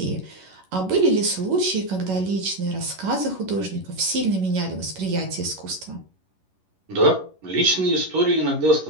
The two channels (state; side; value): late; left; 11 ms